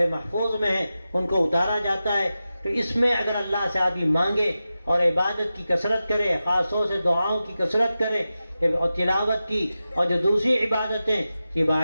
محفوظ میں ہیں، ان کو اتارا جاتا ہے۔ تو اس میں اگر اللہ سے آدمی مانگے اور عبادت کی کثرت کرے، خاص طور سے دعاؤں کی کثرت کرے اور تلاوت کی اور جو دوسری عبادتیں، یہ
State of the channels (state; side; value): inverted; both; correlation -0.93